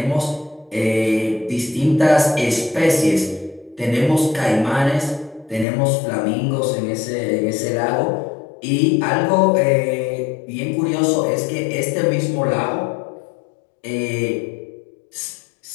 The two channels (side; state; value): right; drops out; at 5.7 s